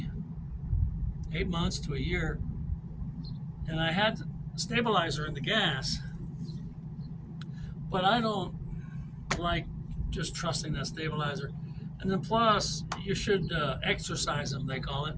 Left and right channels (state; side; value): identical; both; correlation 1.00